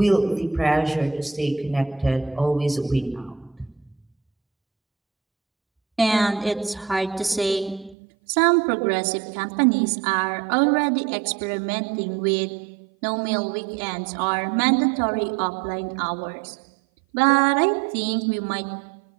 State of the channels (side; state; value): left; drops out; at 8.0 s